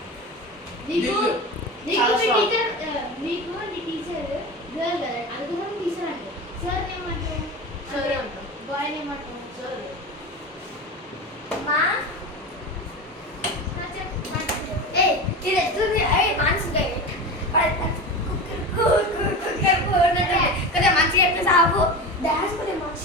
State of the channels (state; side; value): normal; both; correlation 0.27